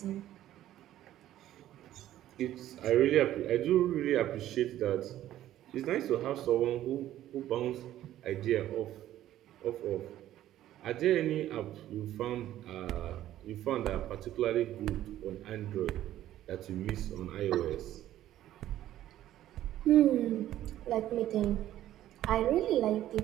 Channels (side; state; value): left; quieter; 13.0 dB